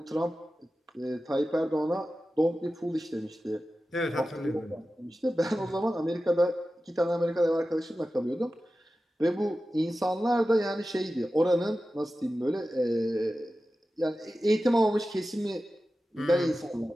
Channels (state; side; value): normal; both; correlation 0.94